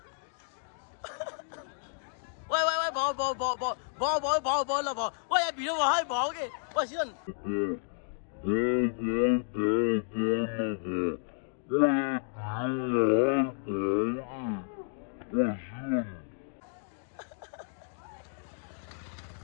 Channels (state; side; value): silent; right; digital silence